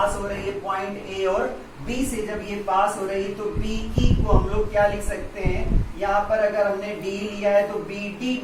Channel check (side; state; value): both; identical; correlation 1.00